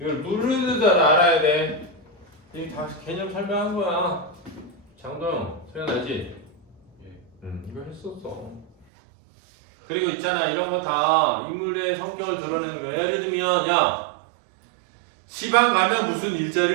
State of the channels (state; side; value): drops out; left; at 8.8 s